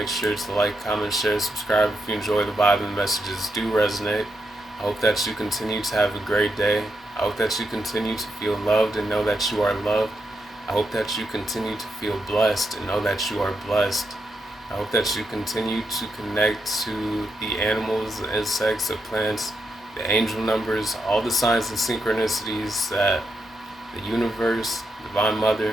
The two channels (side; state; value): both; normal; correlation 0.83